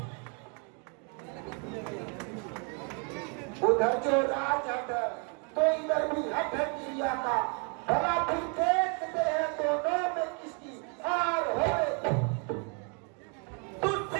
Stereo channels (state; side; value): quieter; left; 37.7 dB